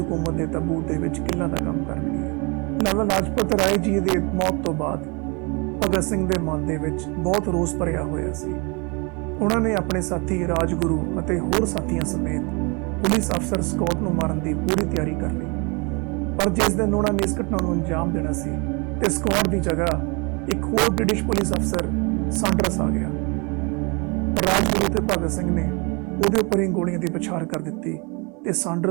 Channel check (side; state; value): left; quieter; 30.3 dB